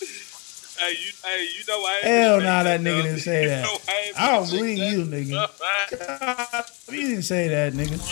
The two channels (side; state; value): right; quieter; 30.5 dB